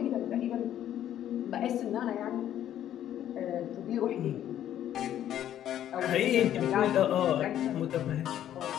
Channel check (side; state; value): right; quieter; 11.2 dB